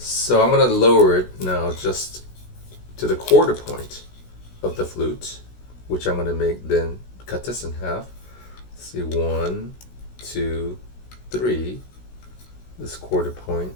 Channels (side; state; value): right; late; 16 ms